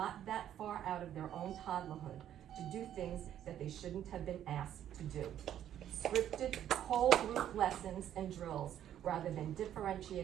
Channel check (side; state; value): left; quieter; 10.8 dB